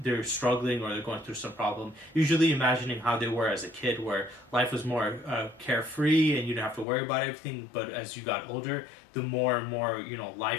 struggling or they're going through some problem, usually imagining how they were as a kid where life was more carefree and you didn't have to worry about everything. But as you got older, the more and more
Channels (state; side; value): drops out; right; at 6.9 s